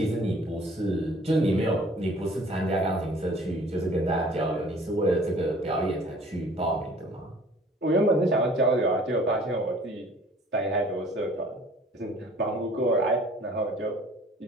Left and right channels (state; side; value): normal; both; correlation 0.52